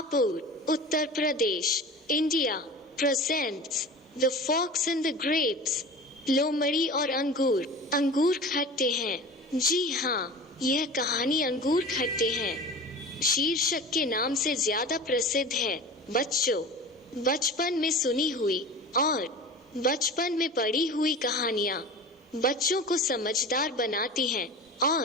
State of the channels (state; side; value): normal; both; correlation 0.35